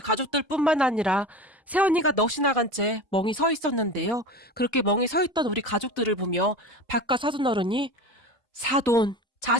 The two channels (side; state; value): both; normal; correlation 0.31